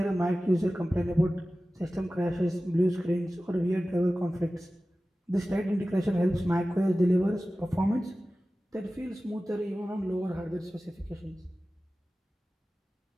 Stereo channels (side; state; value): both; normal; correlation 0.96